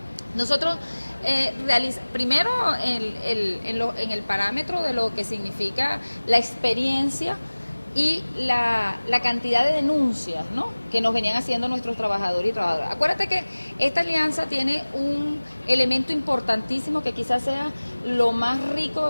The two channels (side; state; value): both; inverted; correlation -1.00